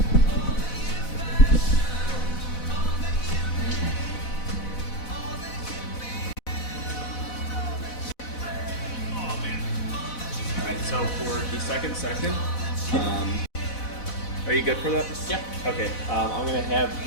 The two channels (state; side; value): late; right; 4.0 ms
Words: So for the second session, are you good for that? Yeah. Okay. I'm going to have